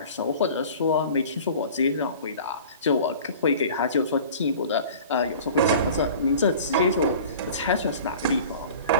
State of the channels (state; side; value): inverted; both; correlation -0.42